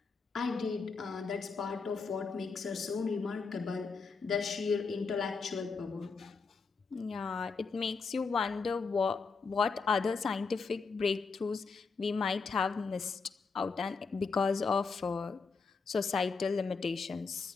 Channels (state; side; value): quieter; right; 4.8 dB